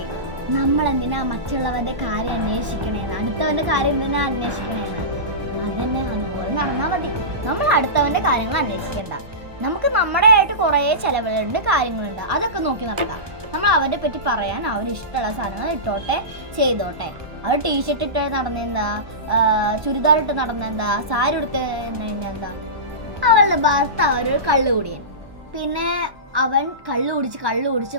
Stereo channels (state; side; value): late; left; 1.2 ms